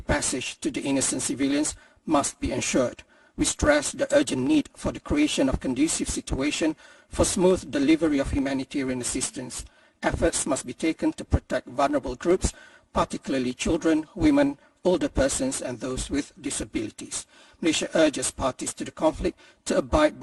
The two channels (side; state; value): both; identical; correlation 1.00